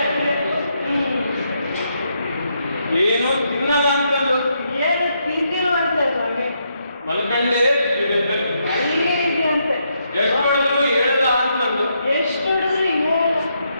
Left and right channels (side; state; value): both; inverted; correlation -0.78